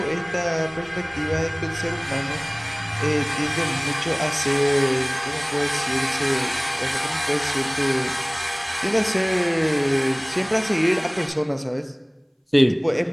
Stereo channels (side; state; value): both; identical; correlation 1.00